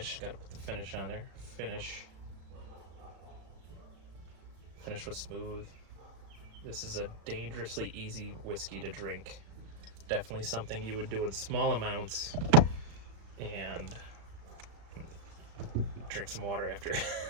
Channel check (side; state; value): left; late; 36 ms